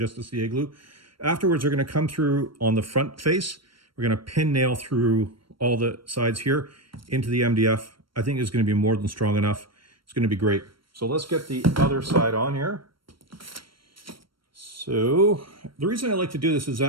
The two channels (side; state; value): left; late; 0.73 ms